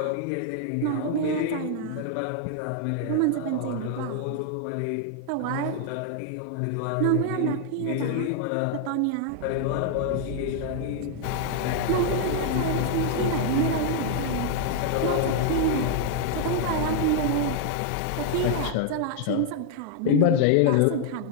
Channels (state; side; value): different; both; correlation 0.00